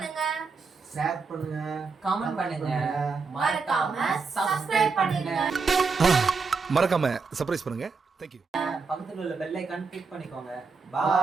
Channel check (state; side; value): quieter; left; 4.7 dB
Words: ஷேர் பண்ணுங்க கமெண்ட் பண்ணுங்க. மறக்காம subscribe பண்ணுங்க மறக்காம சர்ப்ரைஸ் பண்ணுங்க. தேங்க்யூ. பக்கத்துல உள்ள பெல் ஐகான் கிளிக் பண்ணிக்கோங்க.